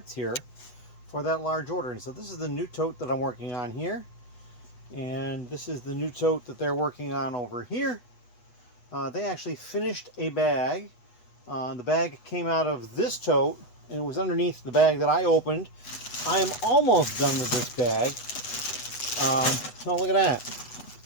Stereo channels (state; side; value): late; right; 8.1 ms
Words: here for that large order. And so this is the new tote that I'm working on here, and this is the new tote that they're working on over here. They actually finished a bag. The bag came out of this tote, and it was underneath the bag that I opened. I am almost done with this bag. Oh, look at that.